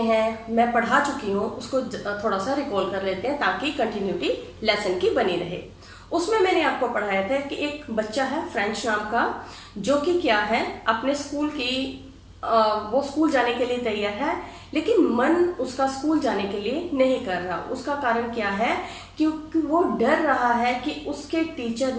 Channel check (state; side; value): identical; both; correlation 1.00